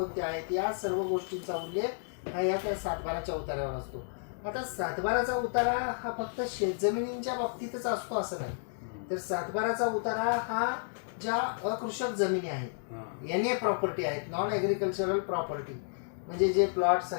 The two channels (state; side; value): silent; right; digital silence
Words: आहेत, या सर्व गोष्टींचा उल्लेख हा या सातबाराच्या उतार्यावर असतो. आता सातबाराचा उतारा हा फक्त शेतजमिनींच्या बाबतीतच असतो असं नाही, तर सातबाराचा उतारा हा ज्या अकृषक जमिनी आहेत, NA प्रॉपर्टी आहेत, नॉन ॲग्रिकल्चरल प्रॉपर्टी, म्हणजे जे प्लॉट्स